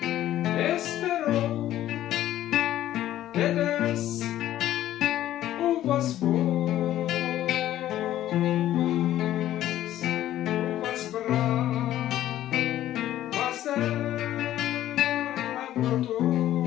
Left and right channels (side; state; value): right; quieter; 13.0 dB